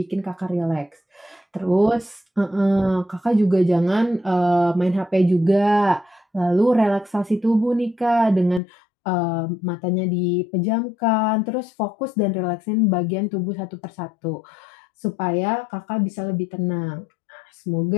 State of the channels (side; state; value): right; drops out; at 8.6 s